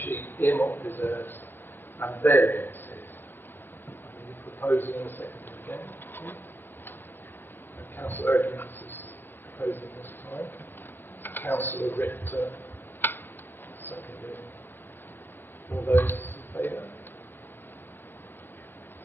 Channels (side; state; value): right; late; 0.097 ms